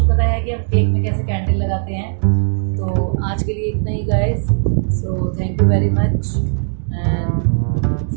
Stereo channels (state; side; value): silent; left; digital silence